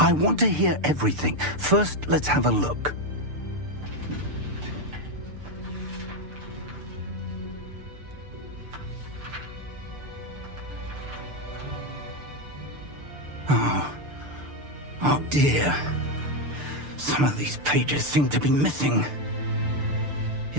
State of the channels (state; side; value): late; left; 6.8 ms